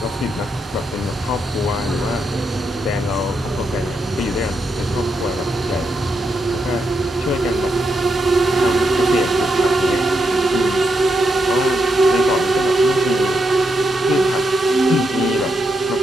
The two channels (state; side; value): normal; both; correlation 0.82